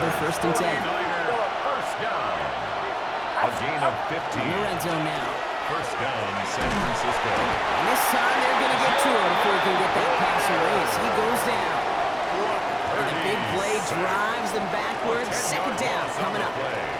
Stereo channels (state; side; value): identical; both; correlation 1.00